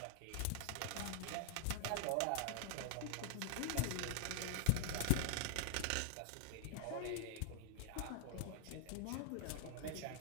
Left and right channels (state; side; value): different; both; correlation -0.01